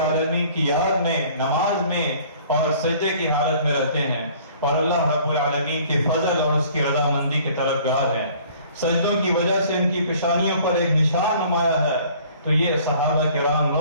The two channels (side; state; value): both; inverted; correlation -0.53